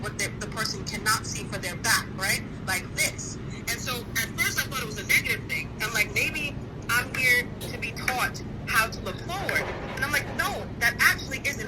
the person cannot see for their back, right? Like this. And so at first I thought it was a negative thing. I'm like, maybe I'm here to be taught how to look forward. And I'm like, no, that actually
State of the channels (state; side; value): identical; both; correlation 1.00